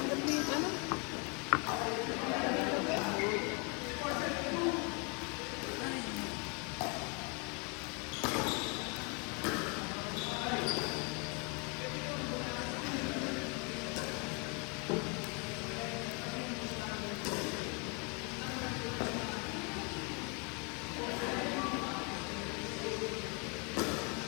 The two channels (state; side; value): quieter; right; 33.6 dB